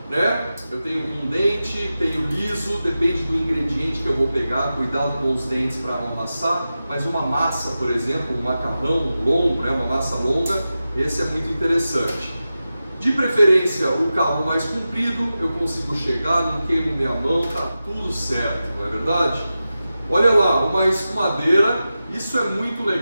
né? Eu tenho um dente, tenho liso, depende do ingrediente que eu vou pegar, cuidado com os dentes para não amassar, mas uma massa, por exemplo, um macarrão longo, né? Uma massa longa, esse é muito interessante. De preferência, o cabo mais comprido, eu consigo chegar, não queimo minha mão, tá tudo certo, não é verdade? Olha lá, uma escumadeira, isso é muito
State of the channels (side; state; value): both; inverted; correlation -0.93